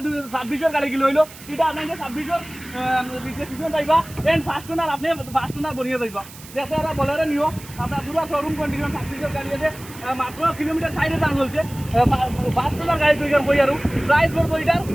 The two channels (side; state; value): right; noise; hiss, 18 dB below the sound